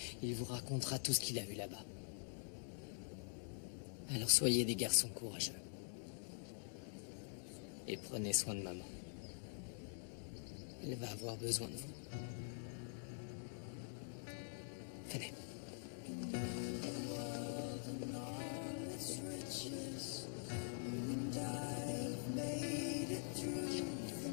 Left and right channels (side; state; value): right; silent; digital silence